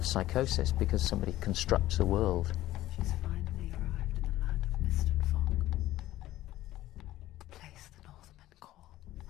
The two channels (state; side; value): quieter; right; 15.2 dB